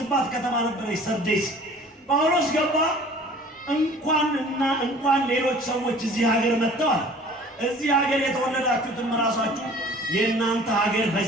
ከተማ ነበረች ሰርዴስ። ጳውሎስ ገባ። እንኳን ሌሎች ሰዎች እዚህ ሀገር መጥተዋል። እዚህ ሀገር የተወለዳችሁትም ራሳችሁ የእናንተ ሀገር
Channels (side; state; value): both; normal; correlation 0.48